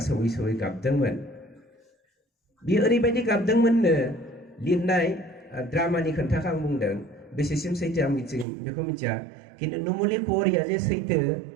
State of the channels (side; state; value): left; drops out; at 8.5 s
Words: सौयै गाबदोंमोन। बियो ओरैबायदि गाबदोंमोननो, लिरनाय ड्रामानि खोन्थाखौ आं बुंदों, बेसेसिम सैथो आं बेखौ मिथिया, खिन्थु नुमलि कुवरिया जे सैथो